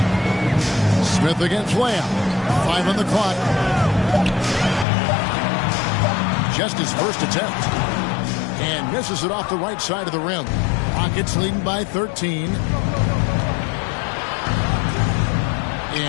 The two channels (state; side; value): drops out; right; at 4.9 s